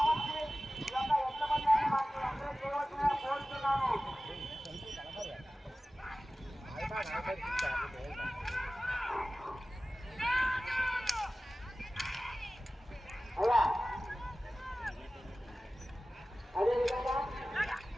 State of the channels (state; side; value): normal; both; correlation 0.96